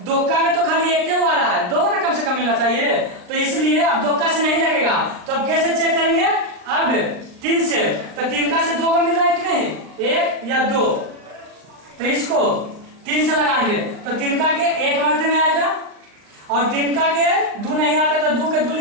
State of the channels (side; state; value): left; late; 39 ms